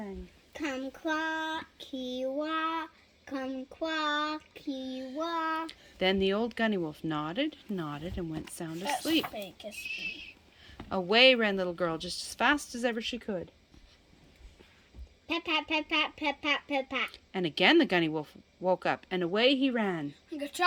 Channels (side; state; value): both; identical; correlation 1.00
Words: Kumquat-ki-wa, kumquat-ki-wa. Then the old Gunniwolf nodded, and went sound asleep. Kiss me. Away ran little girl just as fast as ever she could. Pat, pat, pat, pat, pat, pat, pat, pat. And again the Gunniwolf woke up, and away he ran.